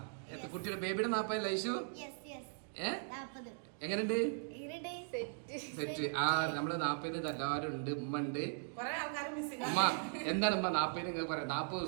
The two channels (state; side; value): silent; left; digital silence